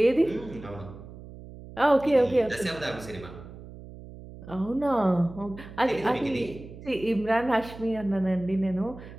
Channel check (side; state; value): right; noise; hum, 15 dB below the sound